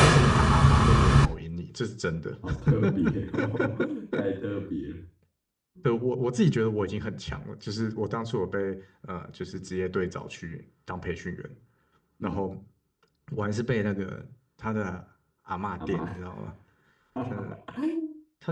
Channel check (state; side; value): identical; both; correlation 1.00